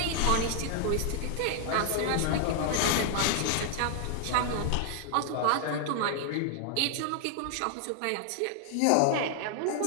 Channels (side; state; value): both; different; correlation 0.00